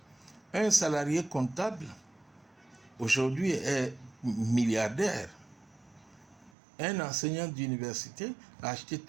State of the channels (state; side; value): drops out; left; at 6.5 s